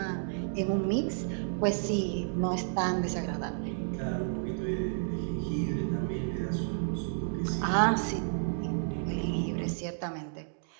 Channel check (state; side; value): silent; left; digital silence